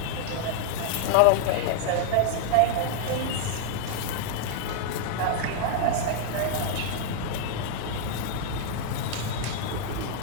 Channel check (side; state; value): both; different; correlation -0.01